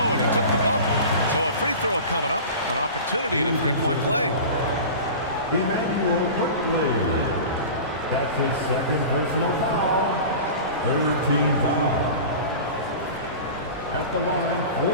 and he took the bump. So a free throw coming up. An opportunity to 3-point play. Emmanuel ProPlay. That's his 2nd personal foul. 3rd team foul. At the line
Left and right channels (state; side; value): inverted; both; correlation -0.34